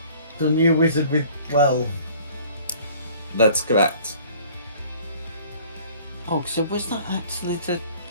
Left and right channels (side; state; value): both; inverted; correlation -0.52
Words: The new wizard with 12. That's correct. Oh, so was that actually the...